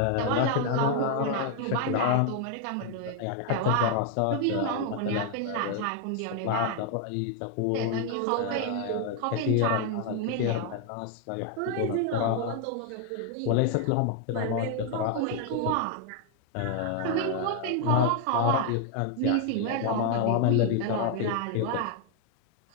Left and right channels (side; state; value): both; different; correlation 0.00